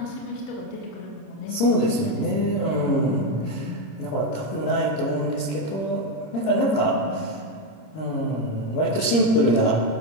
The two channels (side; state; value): right; late; 26 ms